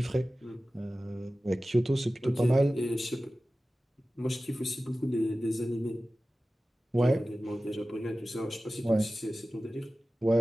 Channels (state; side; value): normal; both; correlation 0.96